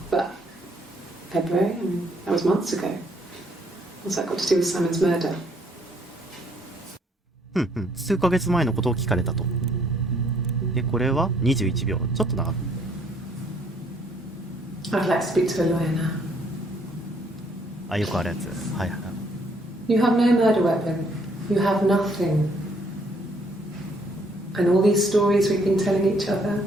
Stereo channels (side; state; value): both; normal; correlation 0.66